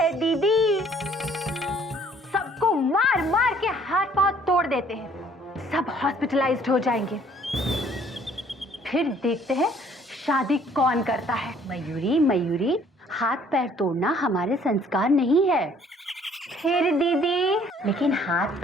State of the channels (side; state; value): both; normal; correlation 0.59